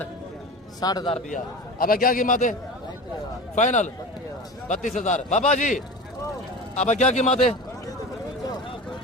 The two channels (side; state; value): both; normal; correlation 0.32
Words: रुपया। अब क्या कीमत है? फाइनल 32,000। बाबा जी अब क्या कीमत है